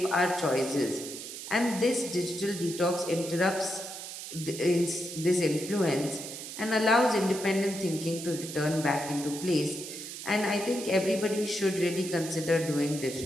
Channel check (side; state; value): right; noise; hiss, 9 dB below the sound